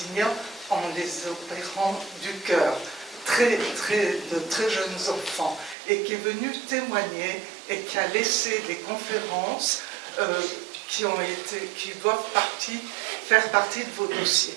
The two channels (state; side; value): drops out; left; at 5.8 s